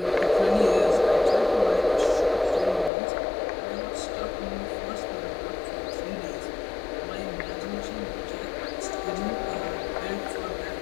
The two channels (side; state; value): right; drops out; at 2.9 s